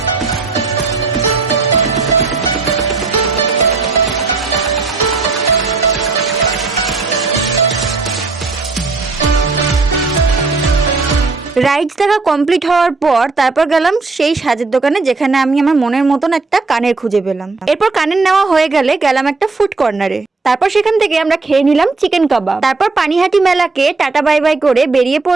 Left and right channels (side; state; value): left; quieter; 3.9 dB